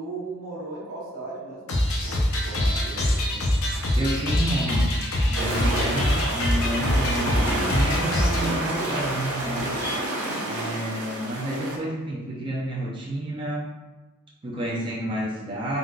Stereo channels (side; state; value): both; normal; correlation 0.65